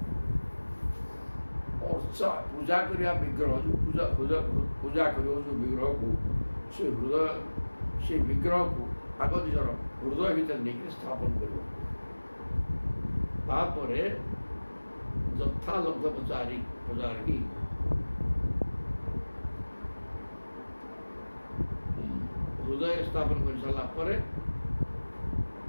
ଅର୍ଚ୍ଚା ପୂଜା କରିବା ବିଗ୍ରହ ଯେଉଁ ପୂଜା କରିବ ଯେଉଁ ବିଗ୍ରହକୁ ସେ ବିଗ୍ରହକୁ ଆଗ ନିଜର ହୃଦୟ ଭିତରେ ନେଇକି ସ୍ଥାପନ କରିବ। ତାପରେ ଯଥା ଲବ୍ଧ ପ୍ରଚାରିକି ହୃଦୟରେ ସ୍ଥାପନ କରି ସାରିଲା ପରେ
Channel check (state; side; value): inverted; both; correlation -1.00